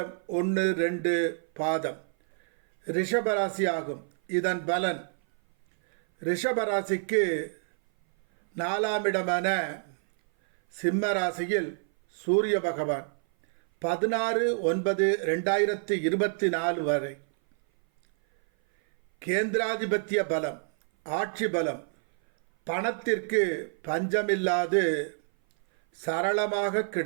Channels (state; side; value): silent; left; 57 dB below the other